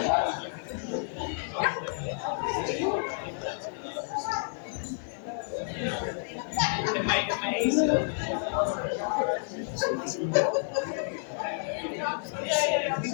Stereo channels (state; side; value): silent; right; digital silence